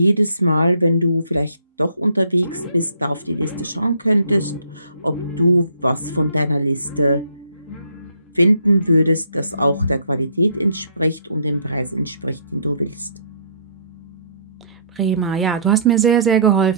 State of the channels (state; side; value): inverted; both; correlation -0.61